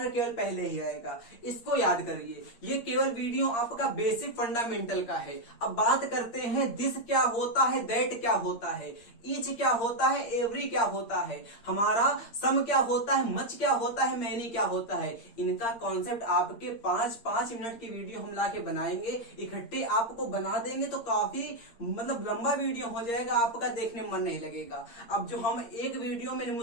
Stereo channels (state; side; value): late; right; 8.6 ms